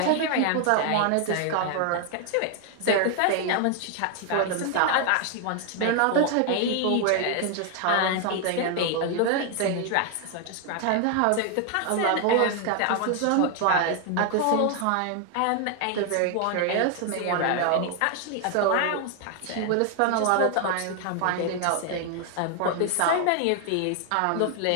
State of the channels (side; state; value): both; different; correlation 0.00